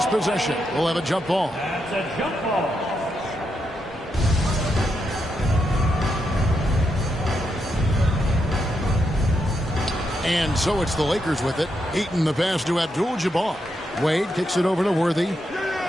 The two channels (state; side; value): normal; both; correlation 0.82